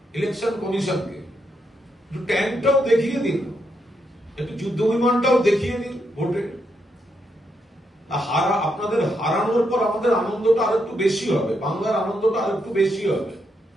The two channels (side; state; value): both; normal; correlation 0.80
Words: ইলেকশন কমিশনকে। একটু ট্যাঙ্কটাও দেখিয়ে দিন, একটু যুদ্ধ বিমানটাও দেখিয়ে দিন ভোটে। আপনাদের হারানোর পর আমাদের আনন্দটা আর একটু বেশি হবে, বাংলার আনন্দটা আর একটু বেশি হবে।